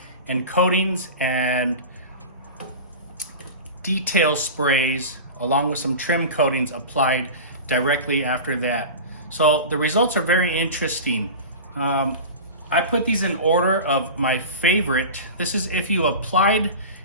and coatings and detail sprays along with some trim coatings applied directly after that. So the results are very interesting. I put these in order of my favorite. This is if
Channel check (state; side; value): inverted; both; correlation -0.30